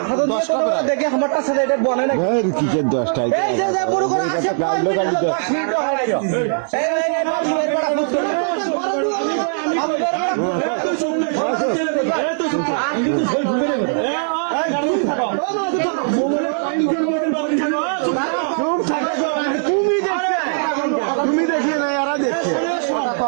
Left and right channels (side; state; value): left; silent; 66 dB below the other